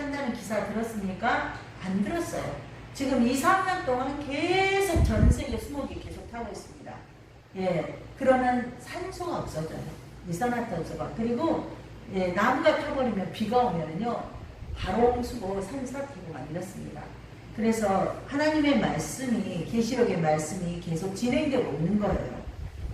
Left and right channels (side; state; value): both; identical; correlation 1.00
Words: 기사 들었습니까? 안 들었어요. 지금 2, 3년 동안 계속 전 세계 수목이 계속 타고 있습니다. 그러면 산소가 없어져요. 이산화탄소가. 그리고 나무가 타버리면 비가 오면은요, 바롱수고 산사태고 만들었습니다. 그래서 하나님의 말씀이, 계시록의 말씀이 계속 진행되고 있는 거예요.